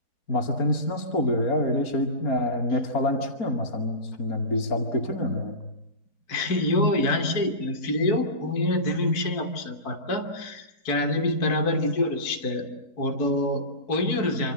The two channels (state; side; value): late; right; 4.3 ms